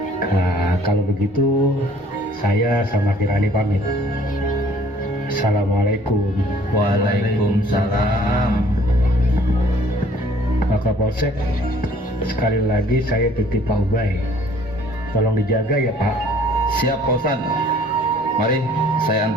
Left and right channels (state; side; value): normal; both; correlation 0.57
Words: Nah, kalau begitu, saya sama Kirani pamit. Assalamualaikum. Waalaikumsalam. Pak Kapolsek, sekali lagi saya titip Pak Ubay. Tolong dijaga ya Pak. Siap Pak Ustadz. Mari saya